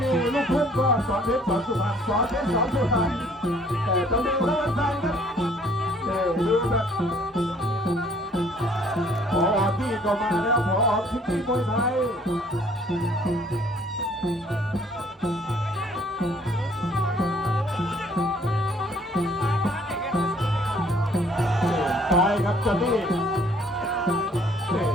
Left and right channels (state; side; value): normal; both; correlation 0.59